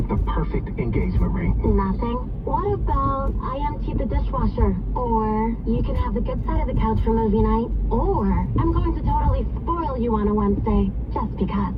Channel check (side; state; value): both; identical; correlation 1.00